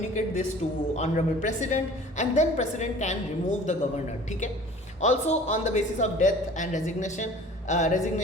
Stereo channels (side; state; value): both; normal; correlation 0.46